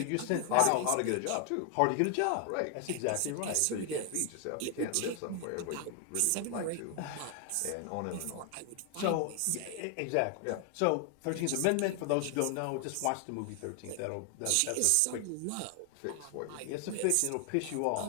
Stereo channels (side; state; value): both; different; correlation 0.00